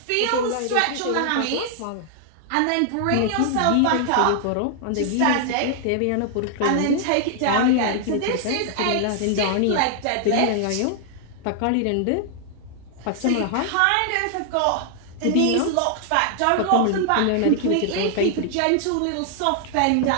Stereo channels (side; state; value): both; different; correlation 0.00